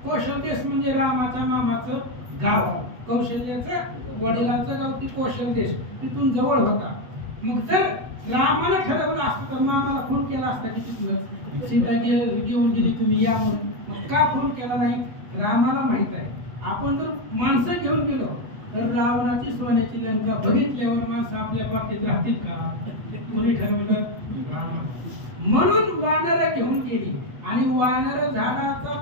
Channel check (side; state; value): left; late; 8.1 ms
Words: कौशल्य म्हणजे रामाच्या मामाचं गाव, कौशल्याचं वडिलांचं गाव ती कौशल्य तिथून जवळ होता. मग जर रामानं ठरवलं असतं तर मामाला फोन केला असता की तिथलं सीता घेऊन गेली तुम्ही या म्हणून. मग का फोन केला नाही? रामाला माहित आहे आपण जर माणसं घेऊन गेलो तर रावणाची सोन्याची लंका बघितल्यावर माणसं आपल्या बाबतीत राहतील का? कोणी ठरवलं? म्हणून वानर घेऊन गेली आणि वानर झाडाचा